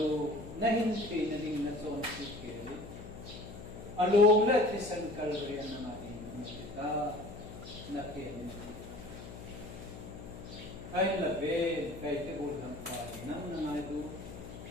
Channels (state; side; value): noise; left; hum, 12 dB below the sound